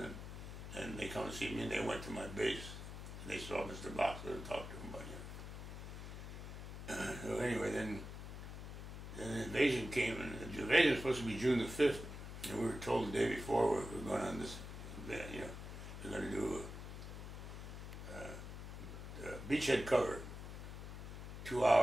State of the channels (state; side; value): noise; left; hum, 9 dB below the sound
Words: and they come to see me, and they went to my base. And they saw Mr. Boxer and talked to him about So anyway, then the invasion came, and the invasion was supposed to be June the 5th, and we were told the day before we're going on this, we're going to do a beachhead cover, 2